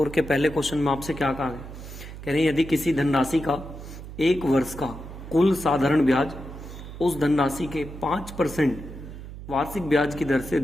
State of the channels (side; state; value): right; noise; hum, 12 dB below the sound